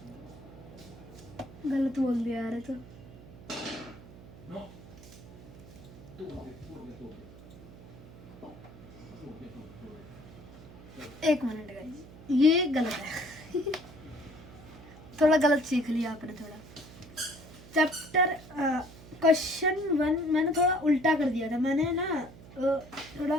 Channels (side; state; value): right; noise; hum, 18 dB below the sound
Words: गलत बोल दिया यार, तो No. Tu, एक मिनट गाइस, ये गलत है। थोड़ा गलत सीख लिया आपने थोड़ा। चैप्टर क्वेश्चन 1 मैंने थोड़ा उल्टा कर दिया था, मैंने ना